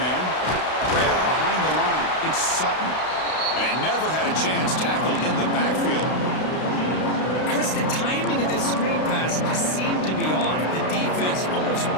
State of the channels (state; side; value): late; right; 32 ms